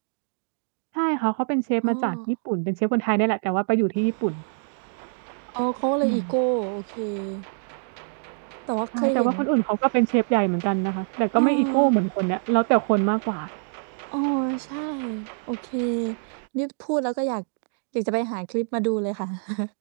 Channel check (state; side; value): silent; left; 62 dB below the other